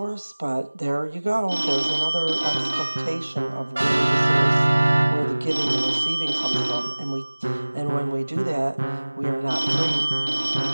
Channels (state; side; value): inverted; both; correlation -1.00